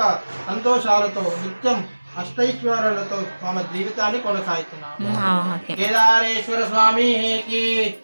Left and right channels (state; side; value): inverted; both; correlation -1.00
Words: సంతోషాలతో నిత్యం అష్టైశ్వర్యాలతో తమ జీవితాన్ని కొనసాగుతున్నారు. కేదారేశ్వర స్వామికి